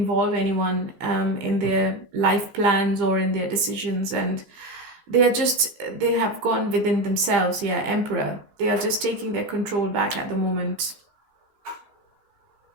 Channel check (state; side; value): late; left; 15 ms